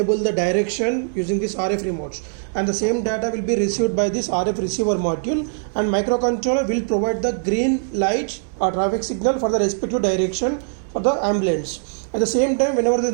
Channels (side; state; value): left; silent; digital silence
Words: the direction using this RF remotes, and the same data will be received by this RF receiver module, and microcontroller will provide the green light or traffic signal for the respective direction for the ambulance. At the same time, whenever the